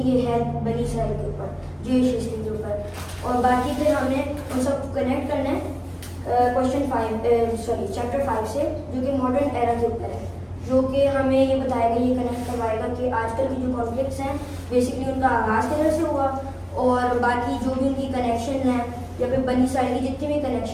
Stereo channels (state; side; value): identical; both; correlation 1.00